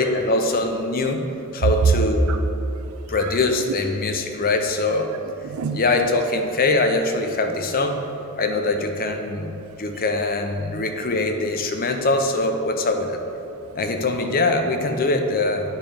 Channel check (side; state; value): both; normal; correlation 0.10